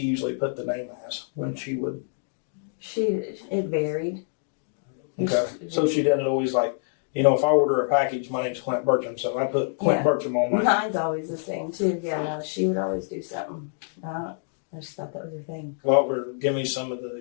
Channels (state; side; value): silent; right; digital silence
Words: usually put the name as when she would? It varied. Okay. So she didn't always if I order a package, my name's Clint Bertram, so I put Clint Bertram on my. Mine's always the same too. Yeah, no, she would always do something. I just thought that was her thing. Well, give me some of the